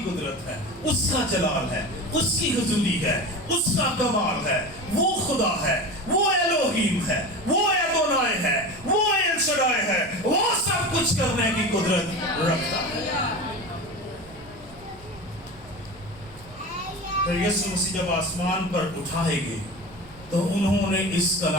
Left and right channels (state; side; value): noise; right; rumble, 21 dB below the sound